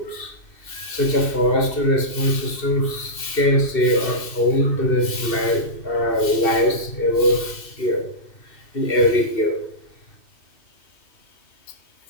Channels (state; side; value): late; right; 2.7 ms